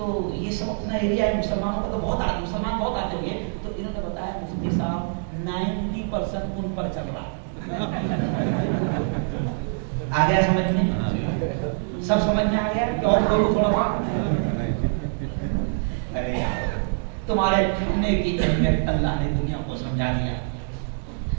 یہ سب اپنا ایریا ہے، مسلمانوں کا تو بہت آتے، مسلمان بہت آتے ہوئے. تو انہوں نے بتایا مفتی صاحب 90% ان پر چل رہا. آ گیا سمجھ میں؟ سب سمجھ میں آ گیا کہ اور بولو تھوڑا سا. ارے یار تمہارے کھانے کی اہمیت اللہ نے دنیا کو سمجھا دیا.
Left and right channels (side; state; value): left; silent; digital silence